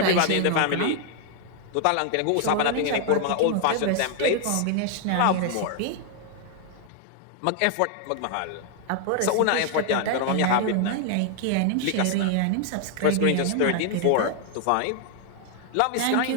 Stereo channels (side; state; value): both; different; correlation 0.00